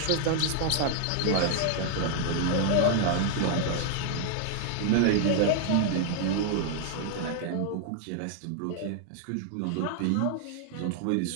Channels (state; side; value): different; both; correlation 0.00